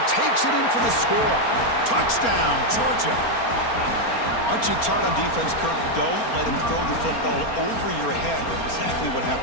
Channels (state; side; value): late; right; 4.3 ms